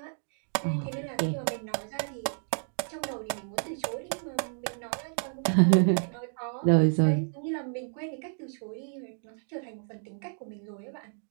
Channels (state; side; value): silent; left; 57 dB below the other